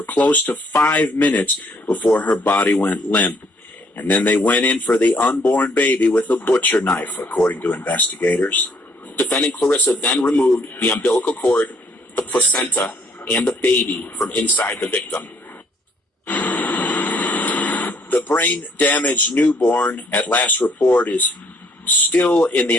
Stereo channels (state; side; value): normal; both; correlation 0.65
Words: close to 5 minutes before her body went limp. And then they went in for the unborn baby with a butcher knife, according to investigators. Defendant Clarissa then removed the umbilical cord, the placenta, and the baby from inside the victim. The brain-damaged newborn, at last report, is still in the